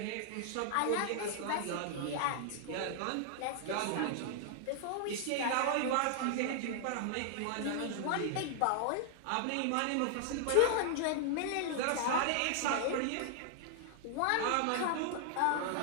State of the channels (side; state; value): both; different; correlation 0.00